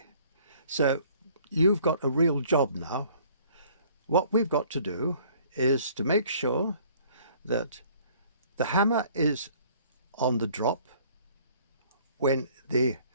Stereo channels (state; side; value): inverted; both; correlation -0.56